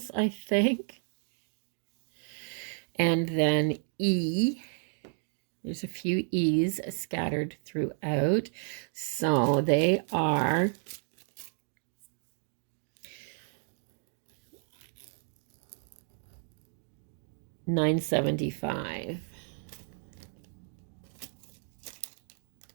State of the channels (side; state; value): left; silent; 56 dB below the other